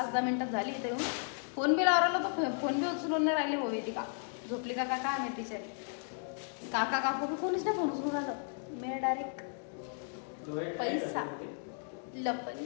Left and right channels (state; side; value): silent; right; 55 dB below the other